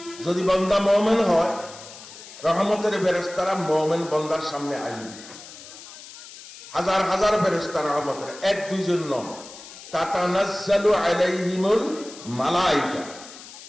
যদি বান্দা মুমিন হয়, রহমতের ফেরেশতারা মুমিন বান্দার সামনে আসবে, হাজার হাজার ফেরেশতা রহমতের, 1-2 জন নয়। তাতানাজ্জালু আলাইহিমুল মালাইকা,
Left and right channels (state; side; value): noise; left; hiss, 16 dB below the sound